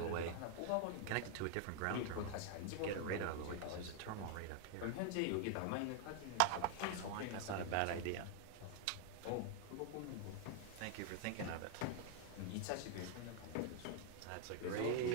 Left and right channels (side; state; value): both; different; correlation 0.00